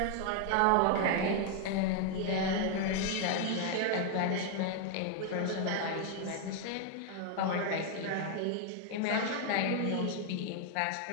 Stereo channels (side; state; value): both; different; correlation 0.00